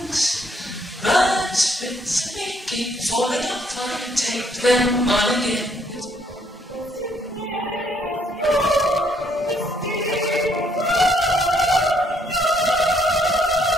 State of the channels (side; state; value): both; normal; correlation 0.68